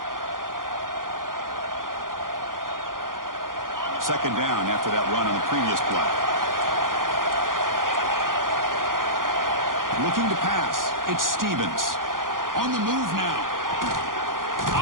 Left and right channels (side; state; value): left; late; 0.90 ms